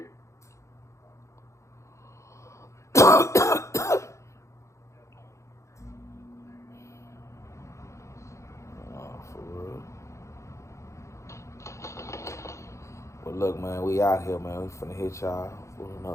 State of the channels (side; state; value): right; late; 0.14 ms